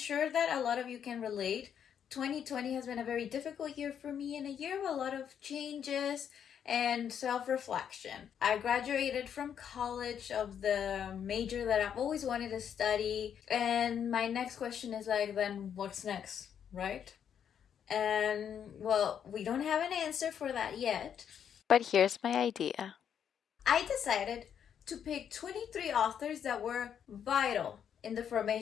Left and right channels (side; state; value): right; quieter; 8.5 dB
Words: that a lot of you can relate. 2020 has been a very difficult year for me and a year of a lot of changes and self-reflection. I graduated from college of the major that I've always wanted to study, and my next question is like, then what's next, right? And well, we don't have an answer for that yet. But here's my idea. I decided to pick 23 authors that were vital in the